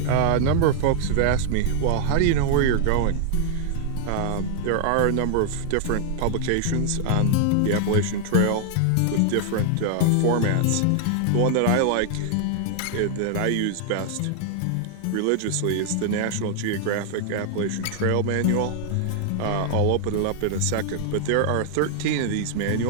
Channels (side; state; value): both; different; correlation 0.00